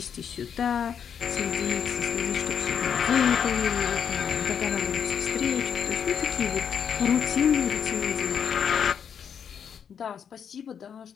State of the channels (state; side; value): quieter; right; 7.8 dB